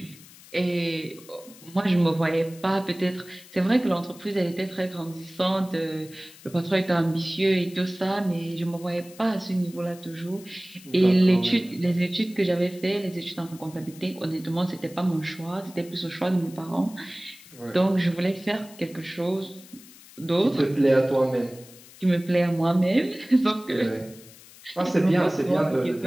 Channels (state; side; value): noise; left; hiss, 21 dB below the sound